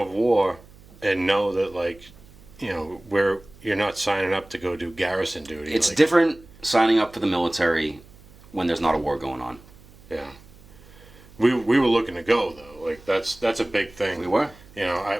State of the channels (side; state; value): right; noise; hum, 24 dB below the sound